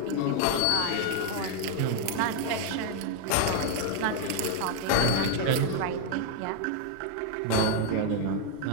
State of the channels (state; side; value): different; both; correlation 0.01